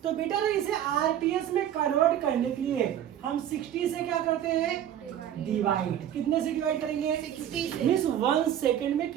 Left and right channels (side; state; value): left; quieter; 10.6 dB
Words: तो बेटा ना इसे आरपीएस में कन्वर्ट करने के लिए हम 60 से क्या करते हैं? डिवाइड। कितने से डिवाइड करेंगे? 60 से। मींस 1 सेकंड में